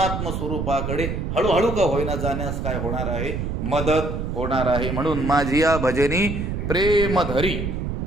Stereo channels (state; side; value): noise; right; rumble, 3 dB below the sound